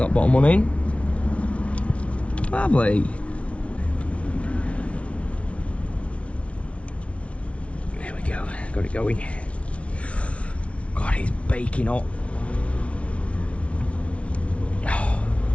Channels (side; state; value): right; late; 0.062 ms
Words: bottom one in. Lovely. There we go. Got it going. God, it's baking hot.